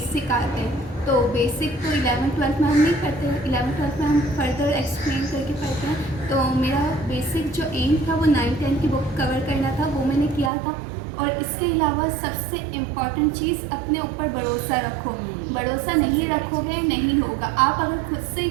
आते हैं, तो बेसिक तो 11-12 में हम नहीं पढ़ते हैं, 11-12 में हम फर्दर एक्सप्लेन करके पढ़ते हैं। तो मेरा बेसिक जो एम था वो 9-10 की बुक कवर करना था, वो मैंने किया था। और इसके अलावा सबसे इम्पॉर्टेंट चीज़ अपने ऊपर भरोसा रखो। भरोसा नहीं रखोगे नहीं होगा। आप अगर खुद से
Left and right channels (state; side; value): drops out; left; at 10.5 s